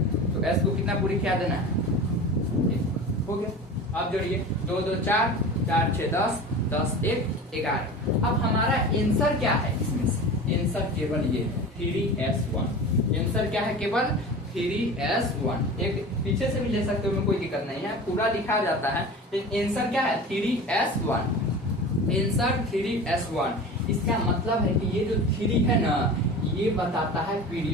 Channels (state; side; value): normal; both; correlation 0.34